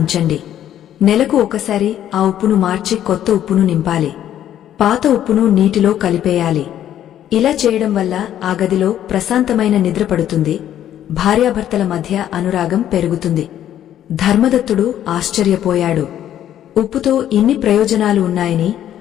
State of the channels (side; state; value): right; quieter; 11.1 dB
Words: నెలకు ఒకసారి ఆ ఉప్పును మార్చి కొత్త ఉప్పును నింపాలి. పాత ఉప్పును నీటిలో కలిపేయాలి. ఇలా చేయడం వల్ల ఆ గదిలో ప్రశాంతమైన నిద్ర పడుతుంది, భార్యాభర్తల మధ్య అనురాగం పెరుగుతుంది. ధర్మదత్తుడు ఆశ్చర్యపోయాడు. ఉప్పుతో ఇన్ని ప్రయోజనాలు ఉన్నాయని